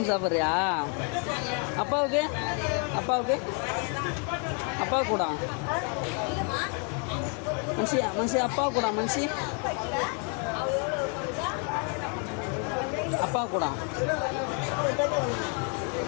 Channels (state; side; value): quieter; right; 38.9 dB